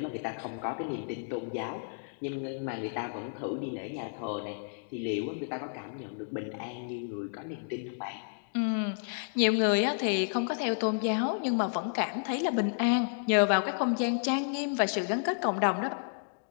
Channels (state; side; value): silent; right; digital silence